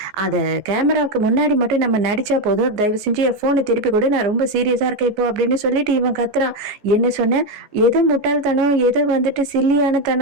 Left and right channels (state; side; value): late; left; 14 ms